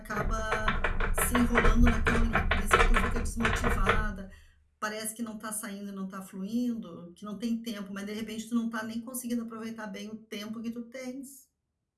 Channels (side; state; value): both; identical; correlation 1.00